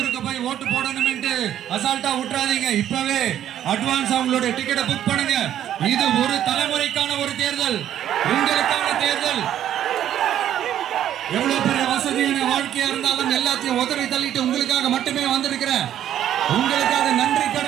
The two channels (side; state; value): left; quieter; 11.0 dB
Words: போய் ஓட்டு போடணும்னு அசால்ட்டா விட்டுறாதீங்க. இப்பவே அட்வான்ஸ் அவங்களோட டிக்கெட்டை புக் பண்ணுங்க. இது ஒரு தலைமுறைக்கான ஒரு தேர்தல், உங்களுக்கான தேர்தல். எவ்வளவு பெரிய வசதியான வாழ்க்கையா இருந்தாலும் எல்லாத்தையும் உதறி தள்ளிட்டு உங்களுக்காக மட்டுமே வந்திருக்கிறேன். உங்களுக்காக நன்றி